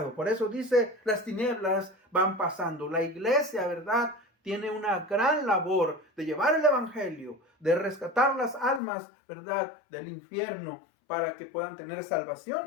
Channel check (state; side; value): drops out; right; at 8.8 s